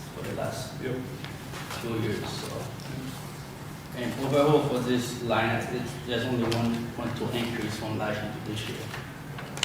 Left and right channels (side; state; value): both; identical; correlation 1.00